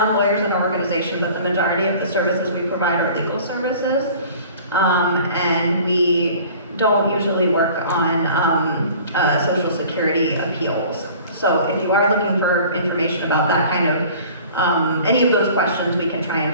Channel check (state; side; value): inverted; both; correlation -0.47